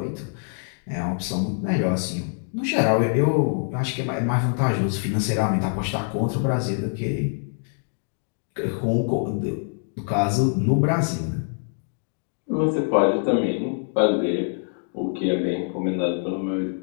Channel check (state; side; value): silent; right; 62 dB below the other